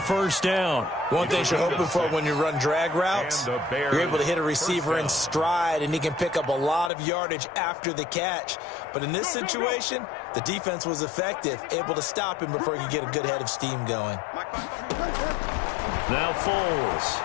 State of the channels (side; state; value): right; drops out; at 6.9 s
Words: down. One thing you're hoping for when you run drag routes, you're able to hit a receiver in stride, and he can pick up a lot of yardage after the catch. But in this situation, the defense was effective, able to stop him before he could get a good head of steam going. Now Foles.